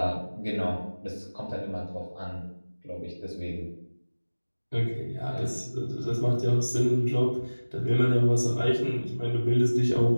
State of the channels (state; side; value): inverted; both; correlation -1.00